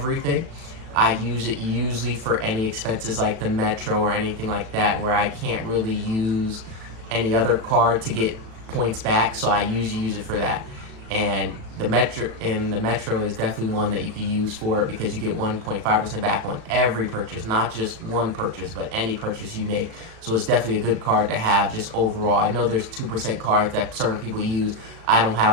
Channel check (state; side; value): late; left; 36 ms